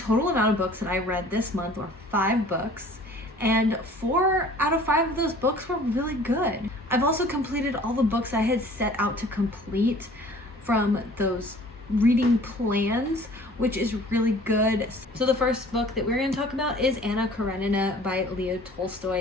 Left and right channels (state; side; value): normal; both; correlation 0.50